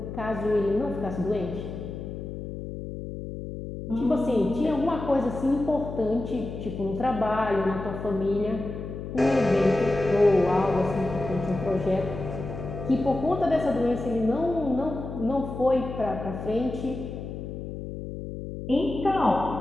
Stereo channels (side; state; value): left; noise; hum, 8 dB below the sound